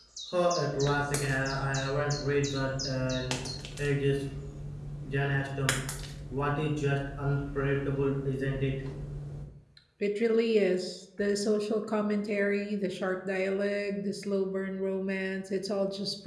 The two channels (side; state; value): both; identical; correlation 1.00